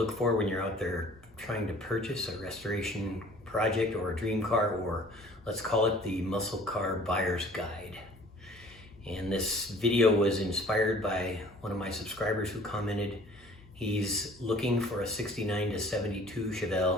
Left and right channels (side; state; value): both; normal; correlation 0.51